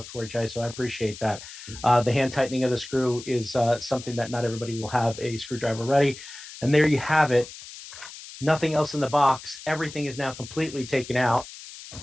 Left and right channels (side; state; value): left; noise; hiss, 14 dB below the sound